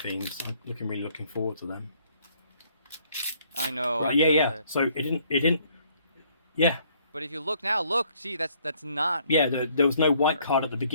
I'm really looking forward to them. I know. Right, yeah. So it didn't. Yeah. But if you look now, see, that's not. Yeah, there was no white card at the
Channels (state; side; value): inverted; both; correlation -0.64